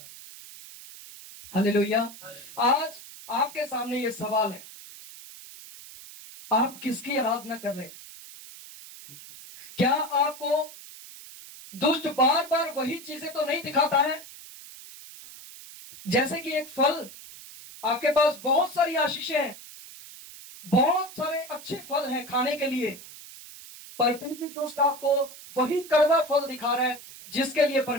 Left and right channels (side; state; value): right; noise; hiss, 16 dB below the sound